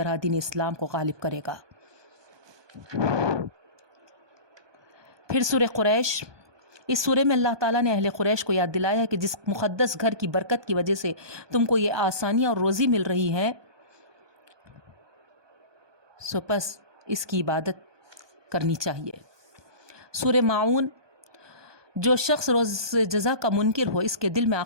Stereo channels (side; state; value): left; late; 1.2 ms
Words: دین اسلام کو غالب کرے گا۔ پھر سورہ قریش، اس سورہ میں اللہ تعالیٰ نے اہل قریش کو یاد دلایا ہے کہ جس مقدس گھر کی برکت کی وجہ سے تم کو یہ آسانیاں اور روزی مل رہی ہے، سو پس اس کی عبادت کرنی چاہیے۔ سورہ معون، جو شخص روز جزا کا منکر ہو، اس کے دل میں